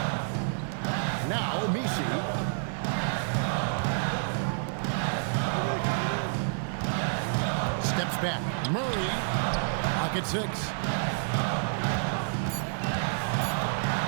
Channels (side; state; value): left; silent; digital silence